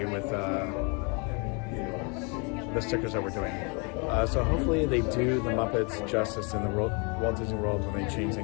with the stickers that we're doing. So hopefully they do the Muppets justice in the Walt Disney World when they change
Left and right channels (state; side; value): quieter; right; 33.2 dB